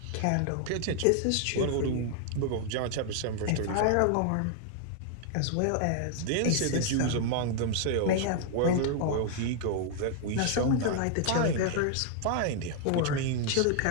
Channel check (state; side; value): different; both; correlation 0.00